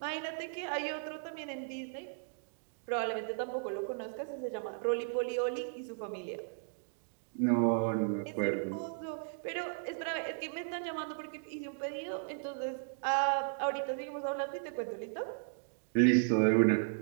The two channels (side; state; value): left; silent; digital silence